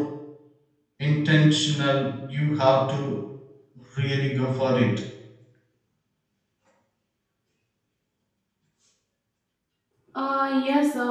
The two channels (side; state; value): both; identical; correlation 1.00